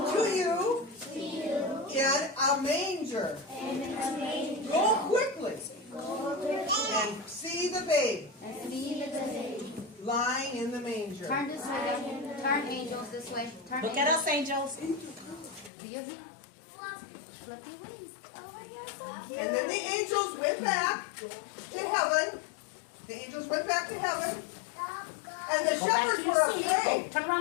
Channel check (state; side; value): drops out; right; at 15.7 s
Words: you to you in a manger. and a manger. Go quickly Go quickly and see the babe and see the baby. lying in the manger. Turn this way. Turn angels this way. Turn Look at us, angels. Do you see? Flip your wings. And then the angels went back to heaven. The angels went back to heaven. And the Go back to shepherds your were seat. afraid. Turn